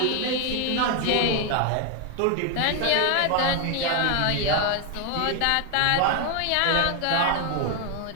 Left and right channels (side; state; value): both; different; correlation 0.00